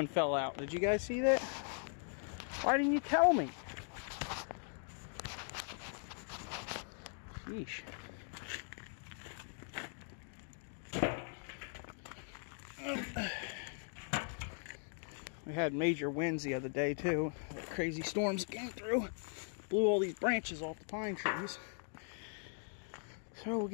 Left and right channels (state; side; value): silent; right; 51 dB below the other